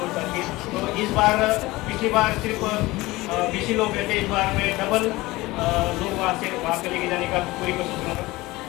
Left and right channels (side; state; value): right; quieter; 20.1 dB